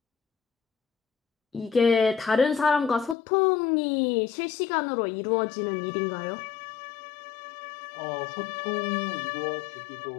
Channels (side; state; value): right; drops out; at 3.2 s